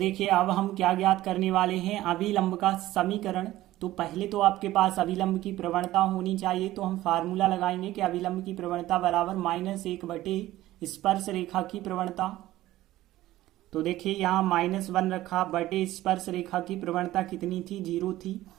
अब हम क्या ज्ञात करने वाले हैं, अभिलंब का समीकरण। तो पहले तो आपके पास अभिलंब की प्रवणता होनी चाहिए, तो हम फार्मूला लगाएंगे कि अभिलंब की प्रवणता बराबर -1 स्पर्श रेखा की प्रवणता। तो देखिए यहाँ -1 रखा बटे स्पर्श रेखा की प्रवणता कितनी थी, जीरो थी।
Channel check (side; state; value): left; quieter; 15.6 dB